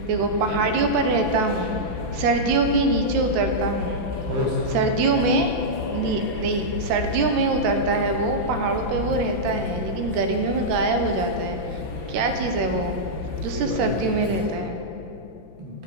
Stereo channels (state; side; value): late; left; 5.9 ms